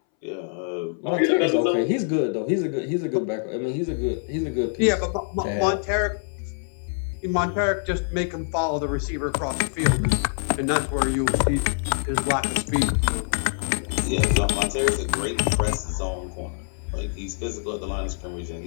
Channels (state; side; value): silent; right; 61 dB below the other